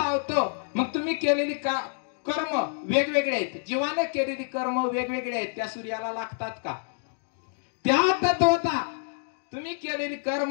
मग तुम्ही केलेली कर्म वेगवेगळे आहेत. जीवाने केलेली कर्म वेगवेगळे आहेत. त्या सूर्याला लागतात का? त्या तत्वता तुम्ही केलेली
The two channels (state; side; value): silent; right; digital silence